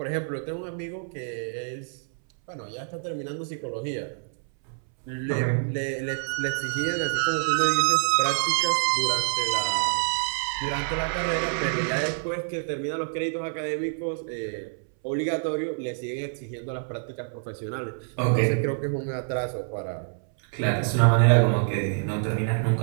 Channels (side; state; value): left; silent; 60 dB below the other